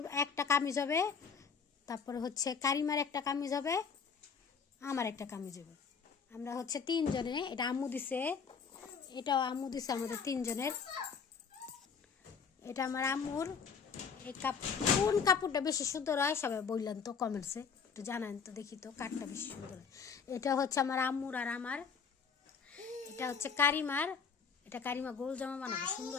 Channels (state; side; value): quieter; right; 6.0 dB